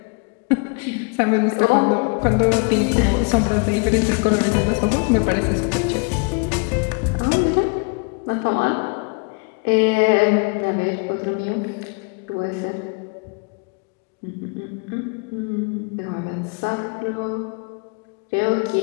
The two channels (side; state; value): right; quieter; 32.8 dB